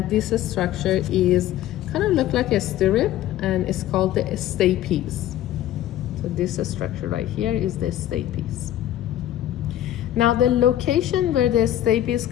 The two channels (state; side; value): quieter; right; 12.7 dB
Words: this structure is kind of look like a stirrup, and it's called the stapes. So this structure right here is the stapes. Now the location where the stapes